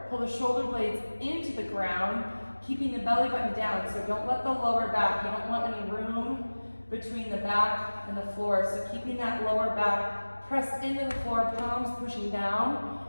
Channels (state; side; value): inverted; both; correlation -1.00